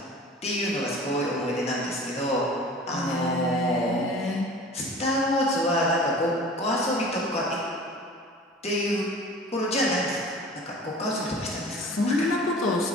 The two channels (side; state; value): both; normal; correlation 0.42